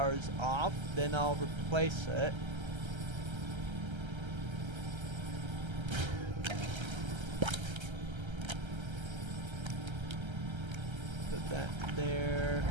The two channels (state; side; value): late; left; 1.3 ms